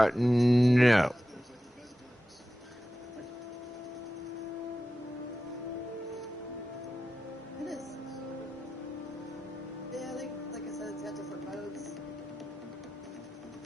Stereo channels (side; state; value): both; normal; correlation 0.93